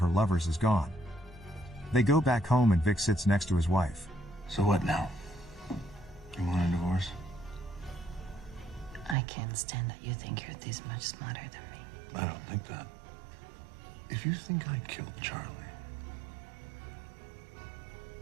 lovers is gone. They go back home and Vic sits next to his wife. So what now? You want a divorce? I can't stand that you think you're this much smarter than me. I don't think that. If you think I killed Charlie,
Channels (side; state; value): left; drops out; at 9.2 s